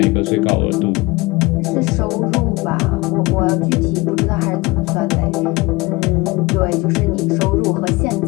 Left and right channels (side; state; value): right; quieter; 22.9 dB